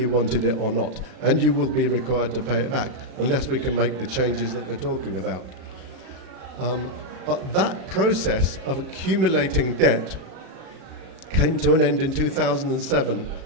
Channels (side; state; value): left; late; 36 ms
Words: wanted it or not, and you will be required to pay it back unless we can make the changes that we're talking about. But that process of accumulating debt came to an end in 2007,